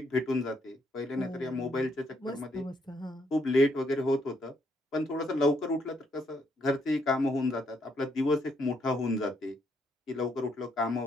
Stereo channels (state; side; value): normal; both; correlation 0.73